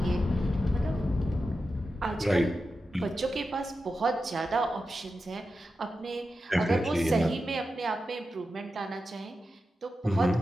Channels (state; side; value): normal; both; correlation 0.91